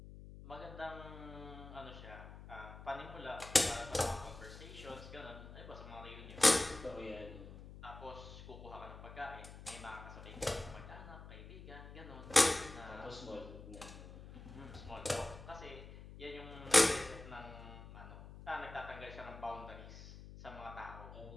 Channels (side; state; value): left; noise; hum, 14 dB below the sound